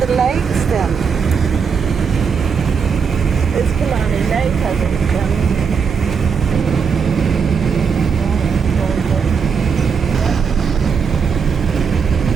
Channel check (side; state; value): left; quieter; 6.1 dB